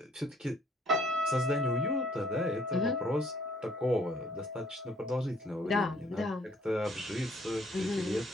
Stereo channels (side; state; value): both; normal; correlation 0.62